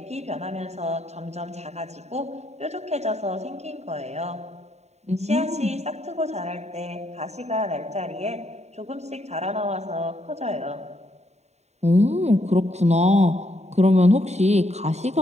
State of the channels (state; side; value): late; left; 0.32 ms